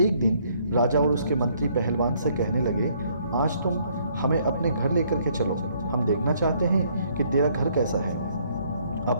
दिन राजा और उसके मंत्री पहलवान से कहने लगे, आज तुम हमें अपने घर लेकर के चलो, हम देखना चाहते हैं कि तेरा घर कैसा है। अब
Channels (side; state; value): both; inverted; correlation -0.66